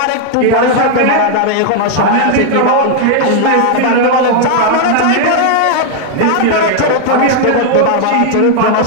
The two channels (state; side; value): different; both; correlation 0.00